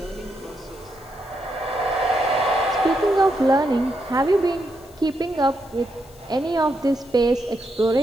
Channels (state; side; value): noise; left; hiss, 27 dB below the sound